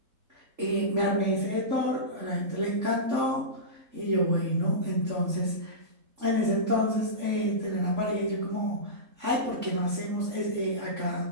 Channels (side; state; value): left; late; 3.8 ms